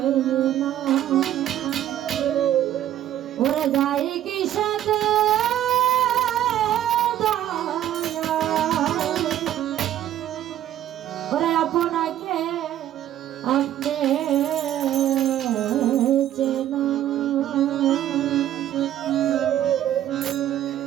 ওরে যাই কি সাথে ওরে আপনাকে আপনি চেনা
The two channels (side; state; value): left; quieter; 12.0 dB